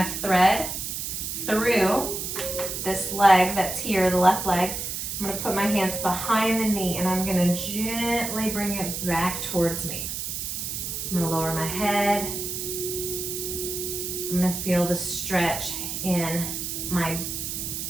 thread through this leg that's here, the left leg. I'm going to put my hands behind the knee and I'm going to gently bring it back towards me. I'm going to lower my head. I'm going to feel the stretch in my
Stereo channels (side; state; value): right; noise; hiss, 4 dB below the sound